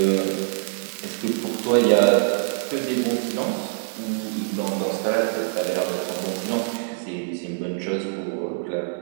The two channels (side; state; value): left; silent; 62 dB below the other